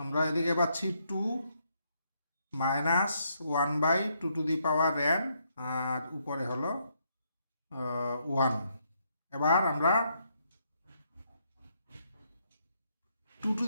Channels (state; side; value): inverted; both; correlation -0.75